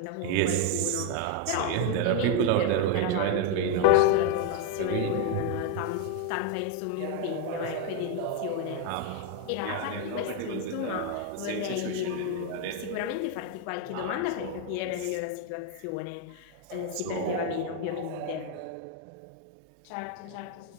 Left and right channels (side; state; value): both; different; correlation 0.01